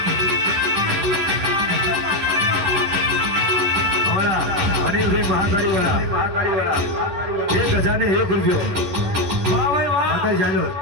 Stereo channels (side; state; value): left; late; 10 ms